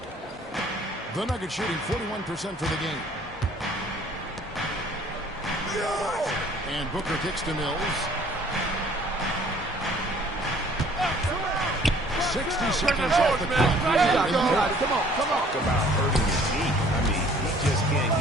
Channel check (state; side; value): normal; both; correlation 0.55